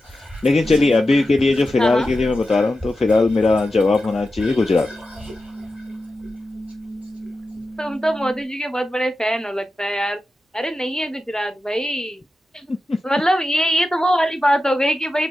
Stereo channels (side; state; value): both; normal; correlation 0.91